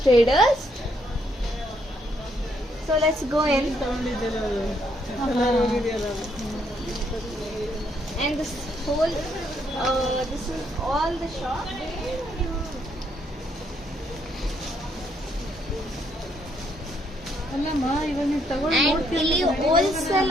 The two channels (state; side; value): normal; both; correlation 0.72